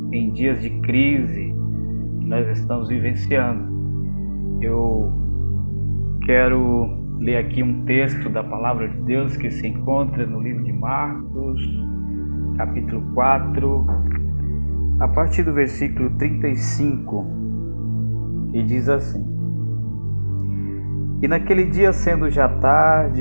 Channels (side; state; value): both; inverted; correlation -1.00